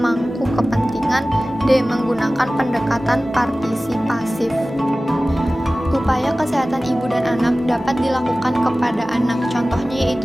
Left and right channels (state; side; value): normal; both; correlation 0.97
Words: kepentingan, D. Menggunakan pendekatan partisipasif. Upaya kesehatan ibu dan anak dapat dilakukan kepada anak, contohnya